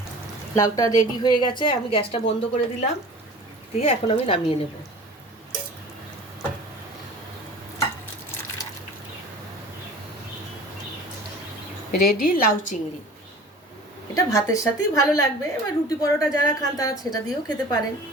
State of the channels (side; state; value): both; normal; correlation 0.41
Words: লাউটা রেডি হয়ে গেছে, আমি গ্যাসটা বন্ধ করে দিলাম, দিয়ে এখন আমি নামিয়ে নেব। রেডি লাউ চিংড়ি। এটা ভাতের সাথেই ভালো লাগবে, এবার রুটি পরোটা যারা খান তারা সেটা দিয়েও খেতে পারেন।